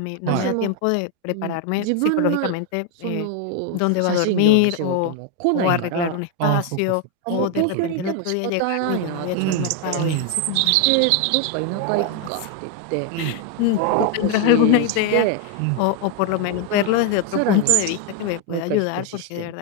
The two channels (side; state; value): both; different; correlation 0.01